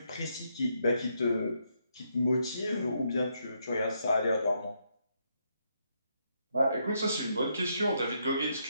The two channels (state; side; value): inverted; both; correlation -0.77